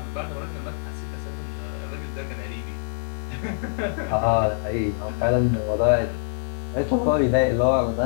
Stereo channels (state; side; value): silent; right; digital silence